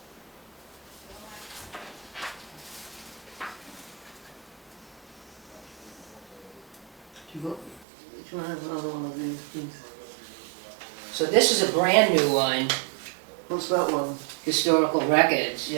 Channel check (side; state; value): left; drops out; at 7.9 s